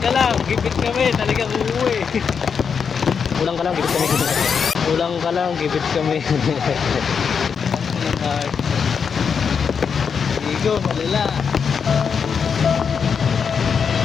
lang, gibit kami, talagang uuwi. Ulang ka lang, gibit kami. Ulang ka lang, gibit kami. Igo, malala.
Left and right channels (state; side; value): quieter; right; 6.4 dB